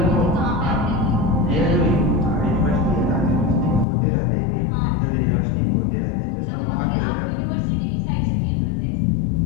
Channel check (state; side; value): drops out; right; at 3.9 s